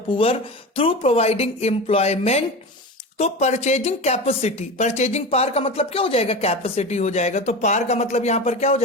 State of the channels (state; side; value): normal; both; correlation 0.27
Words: poor through providing employment. तो परचेजिंग कैपेसिटी, परचेजिंग पावर का मतलब क्या हो जाएगा, कैपेसिटी हो जाएगा। तो पावर का मतलब यहां पर क्या हो